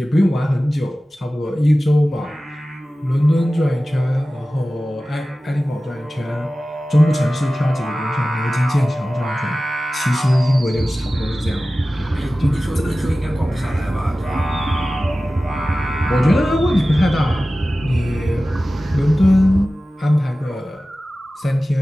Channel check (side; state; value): both; normal; correlation 0.96